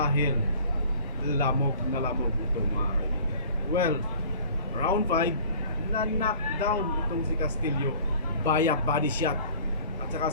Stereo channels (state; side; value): inverted; both; correlation -0.48